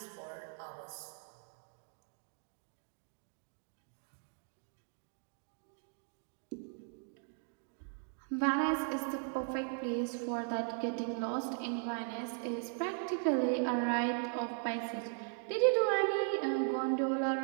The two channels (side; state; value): left; silent; 52 dB below the other